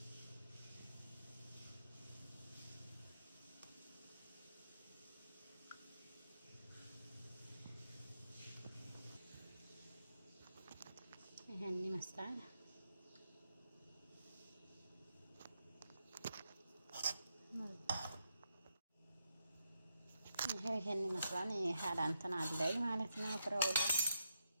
ይሄን ይመስላል። ይሄን ይመስላል። ይሄ እንትን አለኝ ማለት ነው። ፍራውለ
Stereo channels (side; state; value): both; inverted; correlation -0.83